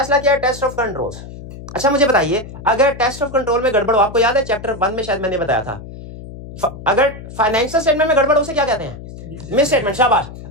किया टेस्ट ऑफ कंट्रोल्स। अच्छा मुझे बताइए, अगर टेस्ट ऑफ कंट्रोल में गड़बड़ हो, आपको याद है चैप्टर 1 में शायद मैंने बताया था, अगर फाइनेंशियल स्टेटमेंट में गड़बड़ हो उसे क्या कहते हैं, मिस स्टेटमेंट। शाबाश।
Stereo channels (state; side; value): noise; left; hum, 13 dB below the sound